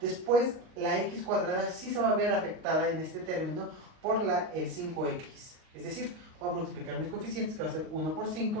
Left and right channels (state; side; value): late; left; 38 ms